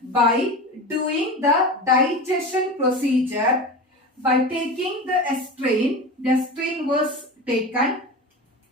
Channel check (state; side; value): normal; both; correlation 0.28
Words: by doing the digestion procedure. By taking the strain was taken,